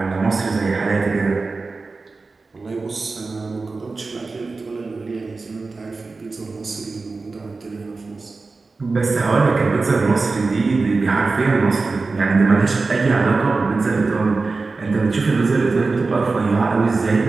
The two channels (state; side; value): quieter; left; 3.9 dB